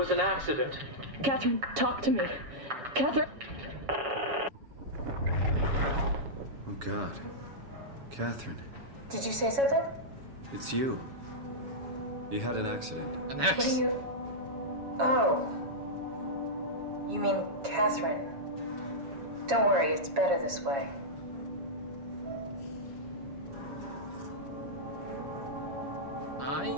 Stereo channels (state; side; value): late; left; 7.2 ms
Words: an accident. Catherine, talk to me. Catherine. Oh, God. Catherine, Did you say something? it's you. You had an accident. An What axe. do you... Oh. You mean Catherine. Don't worry, it's better this way.